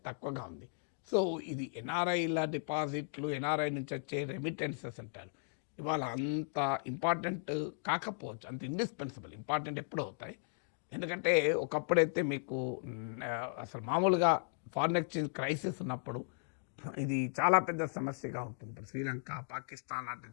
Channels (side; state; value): right; silent; digital silence